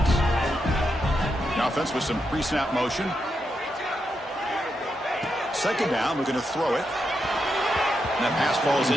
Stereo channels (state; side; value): normal; both; correlation 0.84